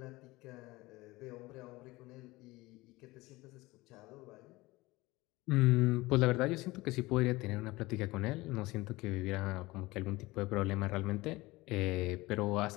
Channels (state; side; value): quieter; right; 20.7 dB